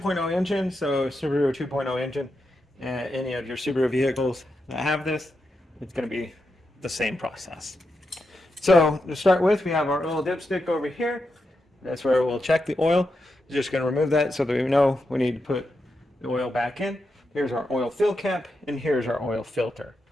engine, so Subaru 2.0 engine. Any of your Subaru vehicles that have this, it's going to be the same process. So to start with, we have our oil dipstick over here. That's where we'll check the oil. Just going to remove that so that we know we need to put the oil back in. Here's our oil fill cap, and here's our oil filter.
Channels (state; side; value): normal; both; correlation 0.86